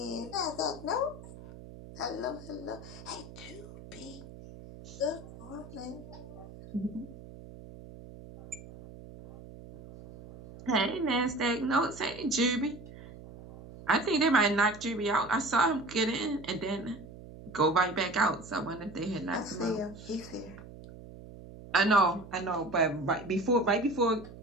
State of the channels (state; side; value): noise; right; hum, 16 dB below the sound